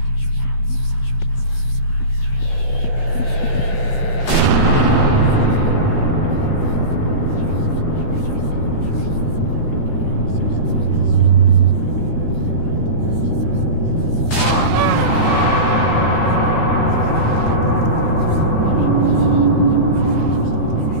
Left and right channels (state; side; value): late; right; 15 ms